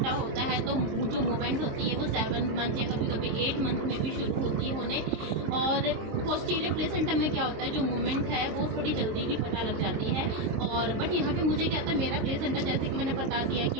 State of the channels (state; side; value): late; left; 23 ms